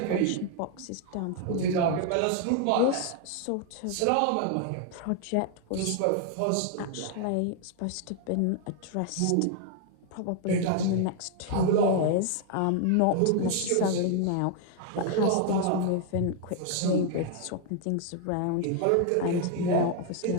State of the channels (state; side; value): different; both; correlation 0.00